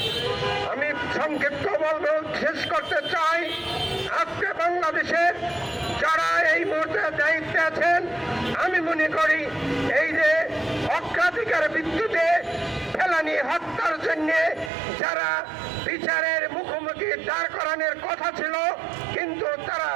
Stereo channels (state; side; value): drops out; left; at 14.7 s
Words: আমি সংক্ষিপ্ত বলবো, শেষ করতে চাই, আজকে বাংলাদেশের যারা এই মুহূর্তে দায়িত্বে আছেন, আমি মনে করি এই যে অগ্রাধিকার ভিত্তিতে ফেলানি হত্যার জন্য যারা বিচারের মুখোমুখি দাঁড় করানোর কথা ছিল, কিন্তু তারা